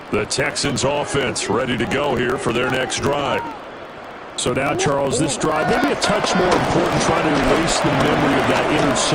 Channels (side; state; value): both; identical; correlation 1.00